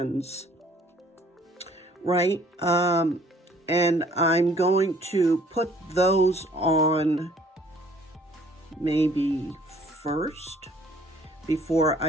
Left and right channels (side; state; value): both; normal; correlation 0.58